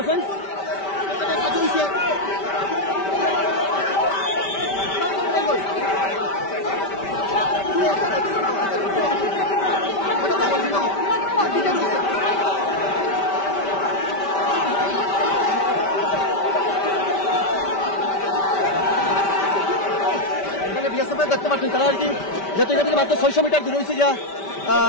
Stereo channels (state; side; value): late; right; 5.1 ms